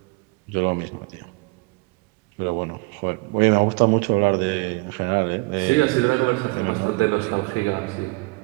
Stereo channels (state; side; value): quieter; left; 26.7 dB